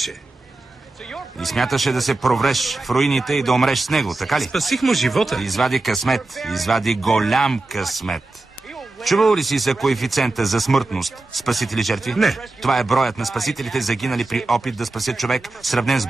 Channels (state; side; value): quieter; left; 3.1 dB